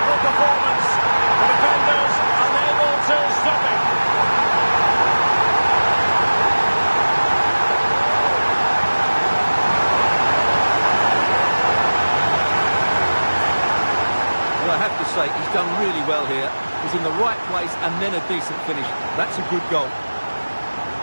performance. The defenders unable to stop it. I have to say, he's done really well here. He's in the right place and then a decent finish. That's a good goal.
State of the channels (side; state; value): both; inverted; correlation -1.00